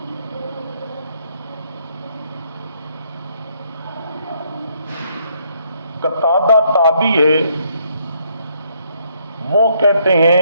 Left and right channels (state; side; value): inverted; both; correlation -0.71